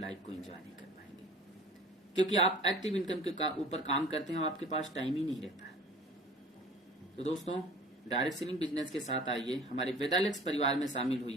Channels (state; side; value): normal; both; correlation 0.45